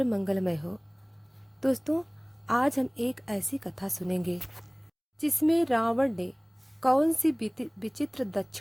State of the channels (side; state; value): both; identical; correlation 1.00